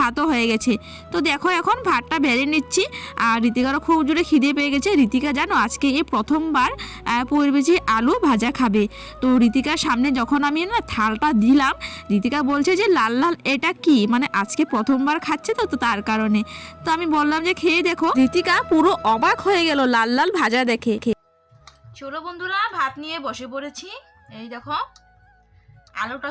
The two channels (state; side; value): identical; both; correlation 1.00